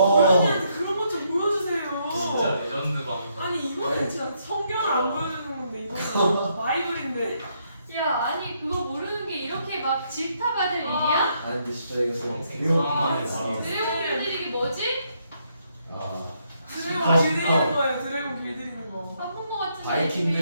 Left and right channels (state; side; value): inverted; both; correlation -0.75